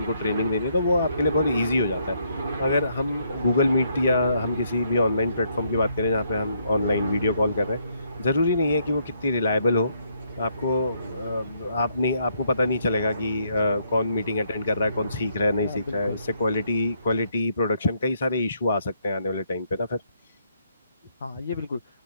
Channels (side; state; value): both; inverted; correlation -0.73